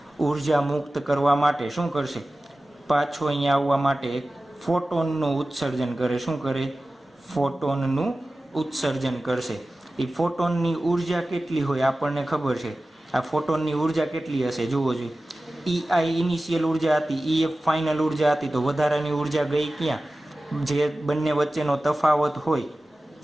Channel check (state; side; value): normal; both; correlation 0.96